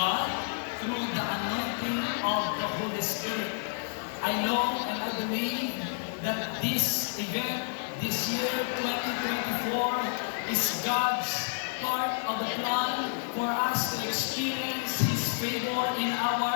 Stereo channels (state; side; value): silent; right; digital silence